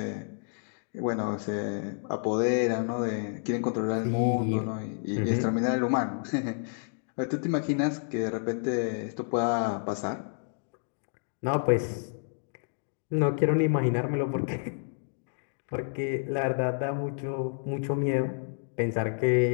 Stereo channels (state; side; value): silent; right; digital silence